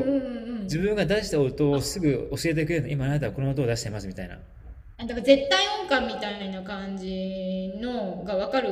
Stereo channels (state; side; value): identical; both; correlation 1.00